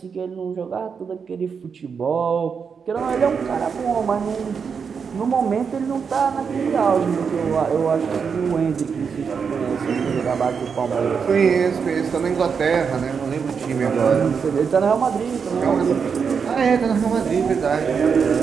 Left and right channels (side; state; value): left; quieter; 6.2 dB